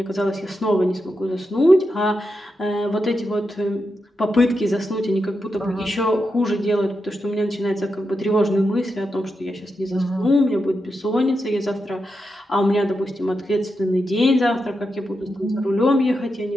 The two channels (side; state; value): both; normal; correlation 0.87